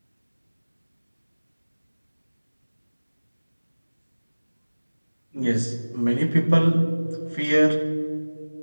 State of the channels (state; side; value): inverted; both; correlation -1.00